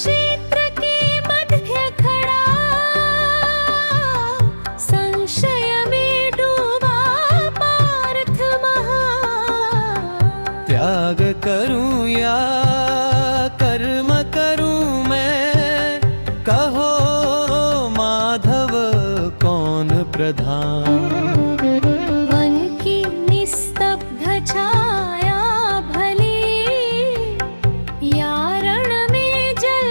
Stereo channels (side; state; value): both; inverted; correlation -1.00